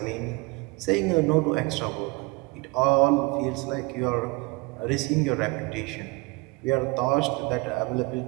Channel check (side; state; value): left; quieter; 24.4 dB